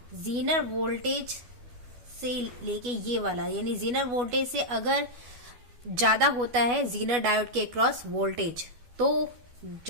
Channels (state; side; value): late; left; 12 ms